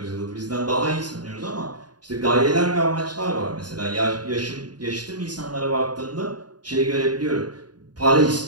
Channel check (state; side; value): late; left; 0.70 ms